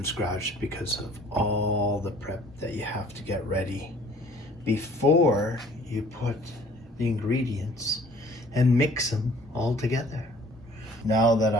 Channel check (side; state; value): both; normal; correlation 0.53